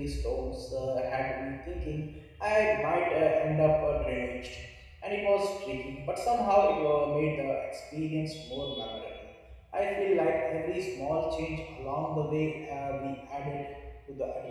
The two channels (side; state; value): both; identical; correlation 1.00